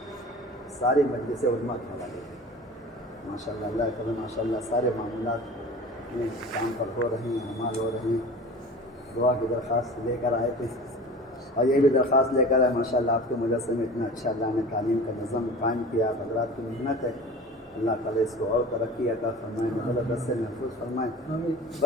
ساری مجلسیں علماء کے حوالے کی ماشاءاللہ۔ اللہ کرے ماشاءاللہ سارے معاملات میں کام پر ہو رہے ہیں، عمال ہو رہے ہیں۔ دعا کی درخواست لے کر آئے تھے، اور یہ بھی درخواست لے کر آئے ماشاءاللہ آپ کے مدرسے میں اتنا اچھا اللہ نے تعلیم کا نظم قائم کیا، آپ حضرات کی محنت ہے، اللہ تعالیٰ اس کو اور ترقی عطا فرمائے، مدرسے سے محفوظ فرمائے۔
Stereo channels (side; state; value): both; normal; correlation 0.38